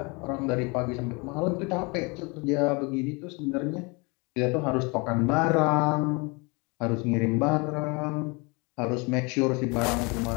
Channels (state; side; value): quieter; right; 28.9 dB